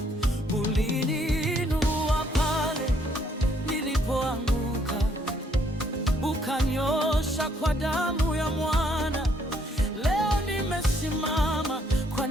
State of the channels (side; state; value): both; normal; correlation 0.68